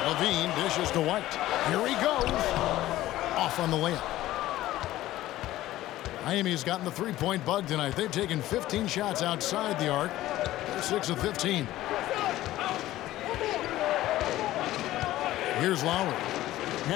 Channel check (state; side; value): quieter; right; 15.3 dB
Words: Levine dishes to White. Here he goes. Off on the layup. Miami's gotten the three-point bug tonight. They've taken 15 shots outside the arc. 6 of 15. Here's Lowry.